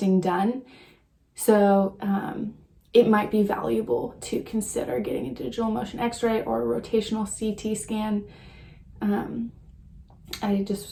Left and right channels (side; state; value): both; identical; correlation 1.00